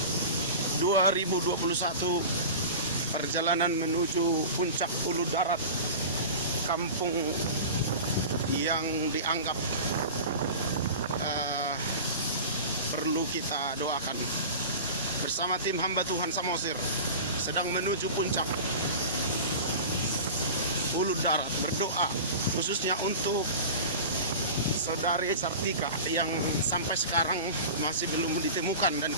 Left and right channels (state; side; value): inverted; both; correlation -0.33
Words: 2021, perjalanan menuju puncak Ulu Darat, kampung yang dianggap perlu kita doakan. Bersama tim hamba Tuhan Samosir sedang menuju puncak Ulu Darat, berdoa khususnya untuk saudari Sartika yang sampai sekarang masih belum ditemukan, dan